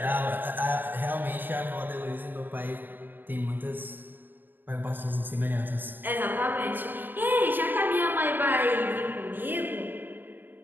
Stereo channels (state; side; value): late; left; 0.093 ms